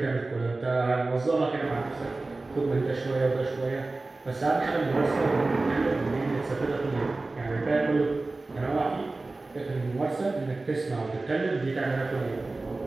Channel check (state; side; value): quieter; left; 3.3 dB